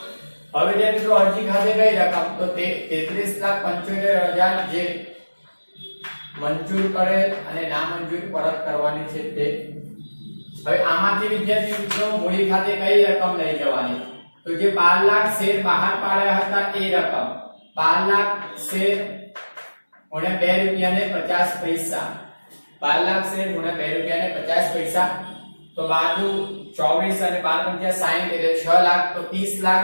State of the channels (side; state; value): both; inverted; correlation -1.00